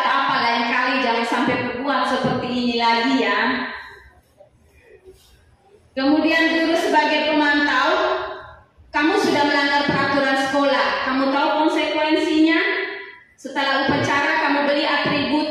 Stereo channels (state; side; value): identical; both; correlation 1.00